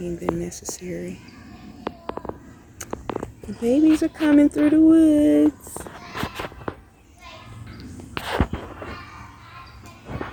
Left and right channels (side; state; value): both; identical; correlation 1.00